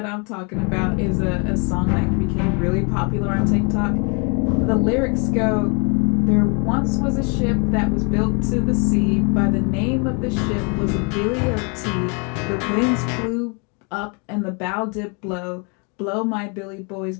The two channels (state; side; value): quieter; right; 34.6 dB